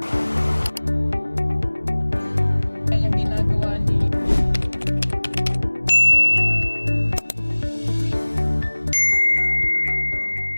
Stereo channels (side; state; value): both; inverted; correlation -1.00